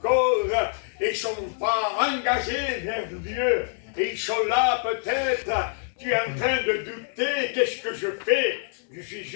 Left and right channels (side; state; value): right; silent; digital silence